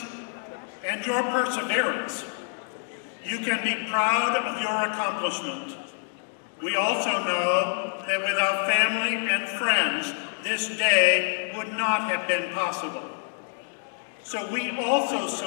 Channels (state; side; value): silent; right; digital silence